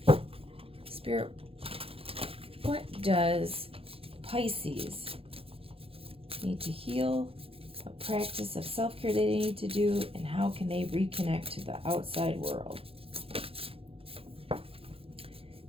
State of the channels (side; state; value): left; late; 0.27 ms